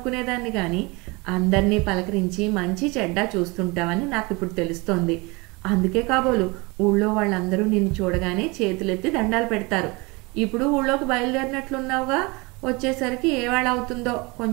కానీ అందరినీ పలకరించి మంచి చెడ్డ చూస్తుంటావని నాకు ఇప్పుడు తెలుస్తోంది. అందుకే కాబోలు ఊళ్ళో వాళ్ళందరూ నిన్ను చూడగానే చేతులెత్తి దండాలు పెడతారు. ఇప్పుడు ఊళ్ళోకి బయలుదేరినట్లున్నావుగా, వచ్చేసరికి ఏ వేళ అవుతుందో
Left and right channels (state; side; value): quieter; left; 26.2 dB